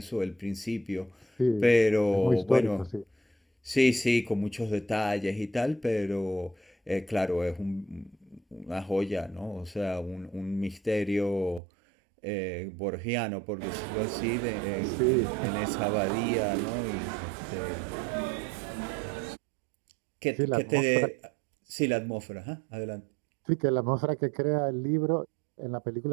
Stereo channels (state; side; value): drops out; left; at 11.6 s